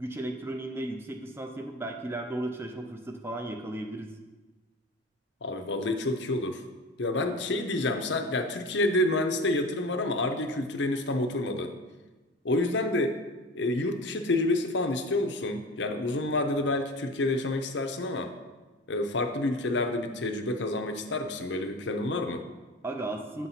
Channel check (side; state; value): both; normal; correlation 0.34